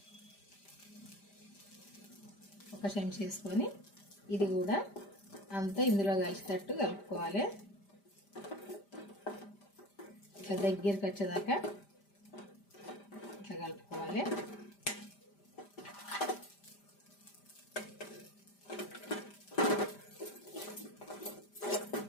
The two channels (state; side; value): late; right; 5.0 ms